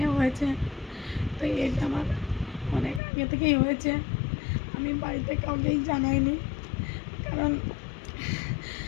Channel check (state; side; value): drops out; right; at 3.0 s